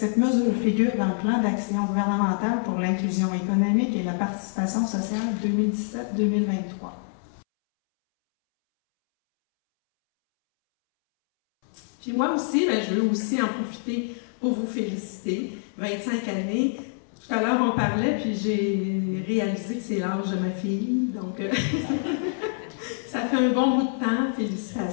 figure dans le plan d'action gouvernemental pour l'inclusion économique et la participation sociale 2017-2023. Puis moi aussi, je veux aussi en profiter pour vous féliciter. 25 années. Tout à l'heure, on parlait, puis j'ai réalisé que c'est l'âge de ma fille. Donc, ça fait un bon bout de temps.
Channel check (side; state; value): right; silent; 61 dB below the other